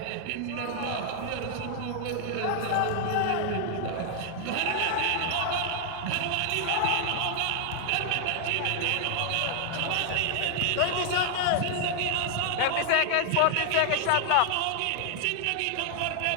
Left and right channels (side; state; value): both; different; correlation 0.00